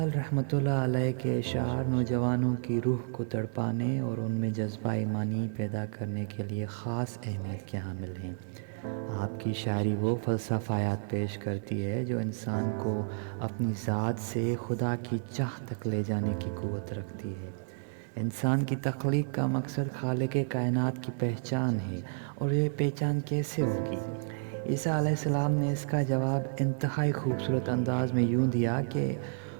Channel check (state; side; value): silent; left; digital silence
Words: رحمۃ اللہ علیہ کے اشعار نوجوانوں کی روح کو تڑپانے اور ان میں جذبہ ایمانی پیدا کرنے کے لیے خاص اہمیت کے حامل ہیں۔ آپ کی شاعری وہ فلسفیات پیش کرتی ہے جو انسان کو اپنی ذات سے خدا کی چاہ تک لے جانے کی قوت رکھتی ہے۔ انسان کی تخلیق کا مقصد خالق کائنات کی پہچان ہے، اور یہ پہچان کیسے ہوگی؟ عیسیٰ علیہ السلام نے اس کا جواب انتہائی خوبصورت انداز میں یوں دیا کہ